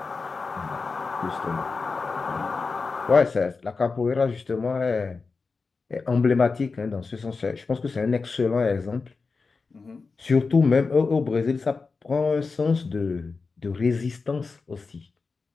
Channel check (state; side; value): quieter; right; 4.4 dB